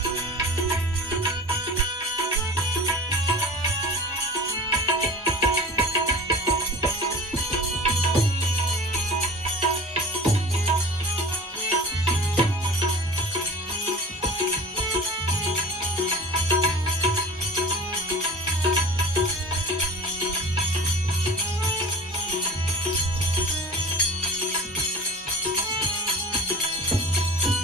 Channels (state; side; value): normal; both; correlation 0.37